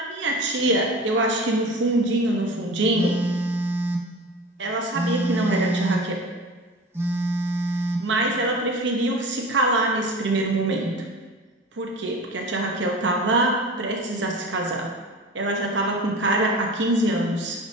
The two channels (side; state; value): both; normal; correlation 0.34